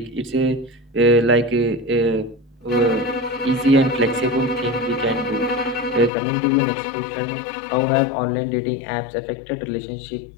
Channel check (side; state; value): right; drops out; at 6.1 s